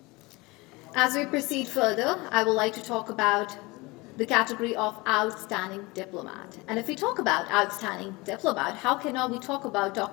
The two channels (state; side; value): quieter; right; 23.7 dB